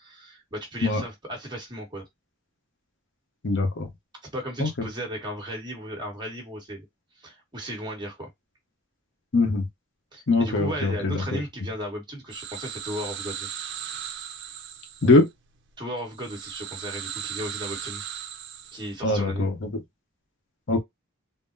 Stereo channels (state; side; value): normal; both; correlation 0.42